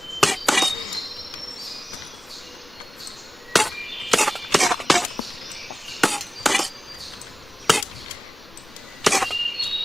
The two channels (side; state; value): both; normal; correlation 0.96